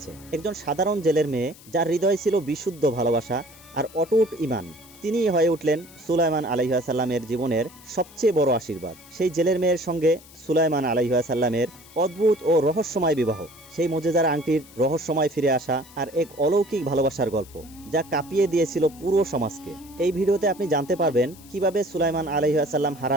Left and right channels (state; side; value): noise; left; hiss, 22 dB below the sound